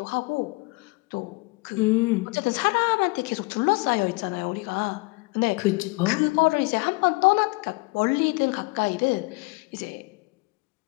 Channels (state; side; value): quieter; right; 26.3 dB